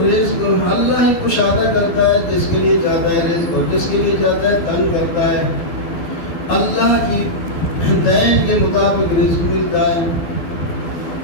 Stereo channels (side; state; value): right; late; 12 ms